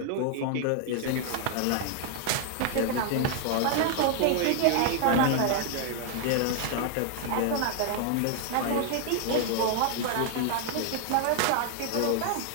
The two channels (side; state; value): both; different; correlation 0.00